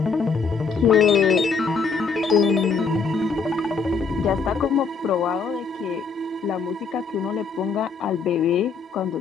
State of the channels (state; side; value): quieter; right; 5.1 dB